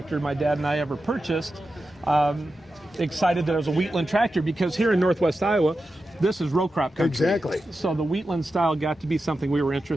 my dad and I ever purchased. Excited that it was a Wheatland tractor, because here in Northwest Iowa, this is row crop country. Exactly. So the Wheatland style got to be something we were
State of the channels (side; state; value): both; normal; correlation 0.91